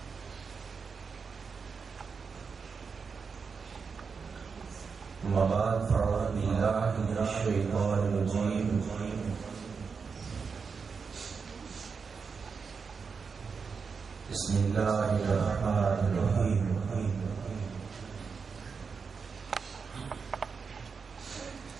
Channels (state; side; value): quieter; left; 5.4 dB